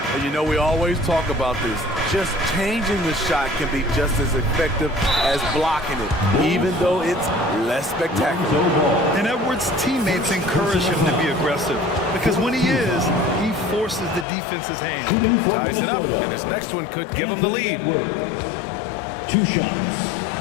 And you know, we always talk about this. Just changing the shot can be just as effective as blocking it, even though it's less spectacular. And Edwards' teammates encourage him to be aggressive because when he is, he forces the defense's hand. Ties it up, and his next one could give him the lead. 2 shots.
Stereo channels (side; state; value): right; drops out; at 14.2 s